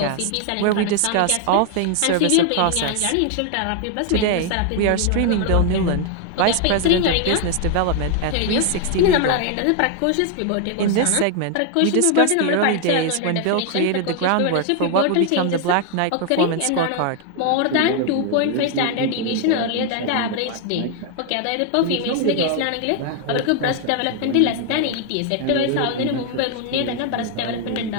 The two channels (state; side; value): different; both; correlation 0.00